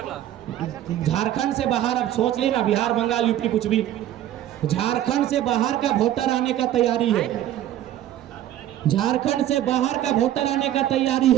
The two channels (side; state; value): left; quieter; 12.3 dB